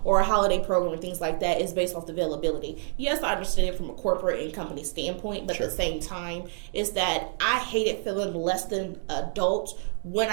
or a holiday program and things like that, is based off the availability. Yes, I understand it from a corporate and company standpoint, but at the same time, is that I hated feeling less than adult when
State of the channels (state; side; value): silent; left; 57 dB below the other